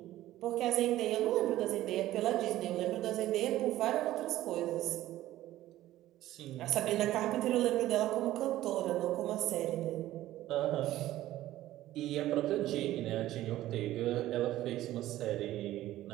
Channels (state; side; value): quieter; left; 14.7 dB